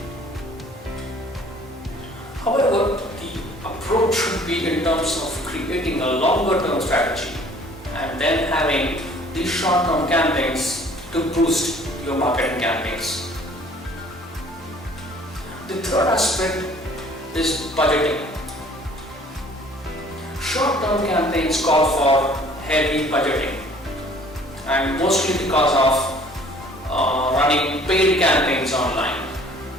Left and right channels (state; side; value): normal; both; correlation 0.54